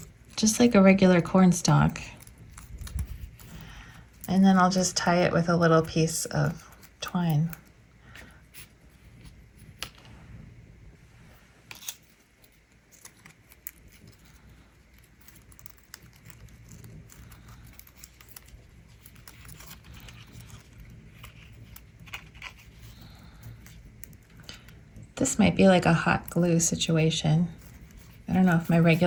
just like a regular corn stalk. And then I'll just tie it with a little piece of twine. This might be like a hot glue situation. I don't know if my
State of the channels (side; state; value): both; identical; correlation 1.00